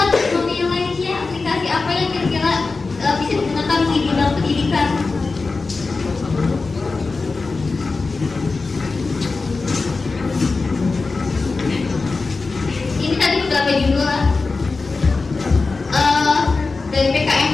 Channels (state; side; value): quieter; right; 4.0 dB